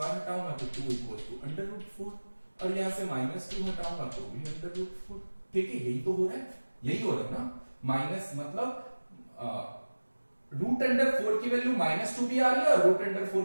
हटाऊंगा तो 2 इक्वल टू अंडर रूट 4 और यहां से माइनस 2 हटाऊंगा तो भी अंडर रूट 4, ठीक है। यही तो हो रहा है, यही हो रहा है ना। माइनस मतलब रूट अंडर 4 की वैल्यू माइनस 2 भी आ रही है और रूट अंडर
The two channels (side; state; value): both; inverted; correlation -1.00